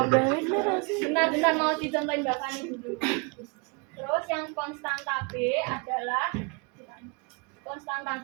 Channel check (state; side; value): quieter; left; 32.2 dB